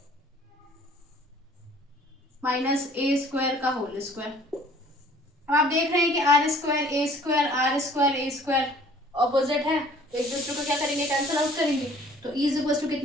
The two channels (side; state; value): both; normal; correlation 0.53